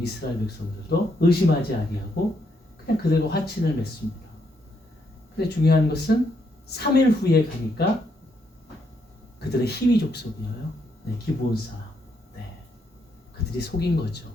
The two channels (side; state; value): both; normal; correlation 0.76